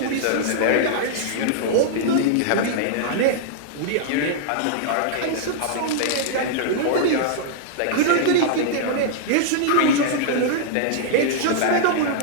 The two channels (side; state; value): both; different; correlation -0.01